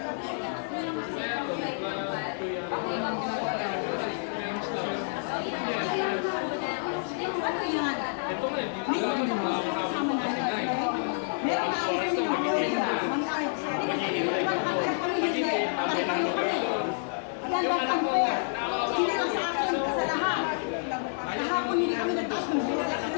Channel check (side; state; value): right; silent; 59 dB below the other